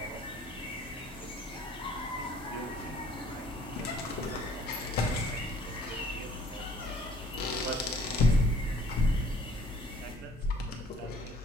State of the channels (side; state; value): both; normal; correlation 0.57